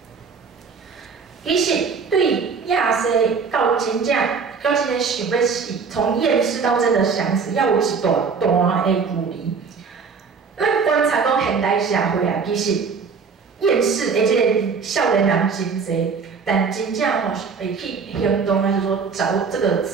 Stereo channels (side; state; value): left; quieter; 5.5 dB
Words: 其实对亚西到真正想要死，从厌世到真的想死，要有一段的距离。咱观察讲现代社会啊，其实厌世的即个少年人真侪，但真正吼会去行动，还是说找这个